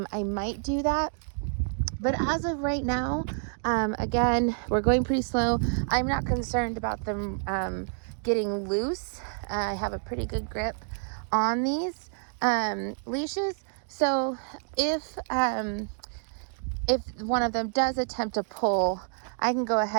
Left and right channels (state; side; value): silent; left; 59 dB below the other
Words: might do that. But as of right now, again, we're going pretty slow. I'm not concerned about them getting loose. I have a pretty good grip on these leashes. So if one of them does attempt to pull, I can go